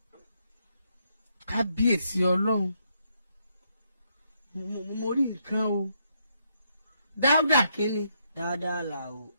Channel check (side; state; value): both; inverted; correlation -0.76